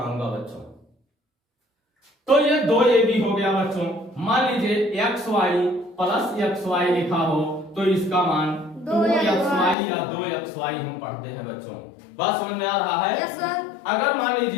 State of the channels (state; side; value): drops out; right; at 9.8 s